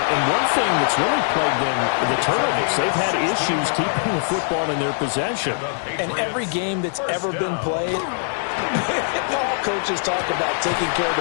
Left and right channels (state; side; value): silent; right; digital silence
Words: And one thing that's really plagued them, the turnovers. They've had issues keeping the football in their possession. And every game that's ever been played, all coaches talk about taking care of